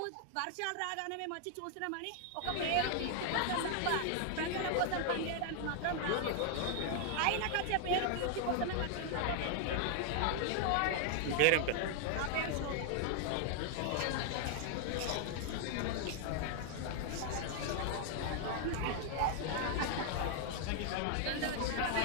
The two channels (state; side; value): different; both; correlation 0.00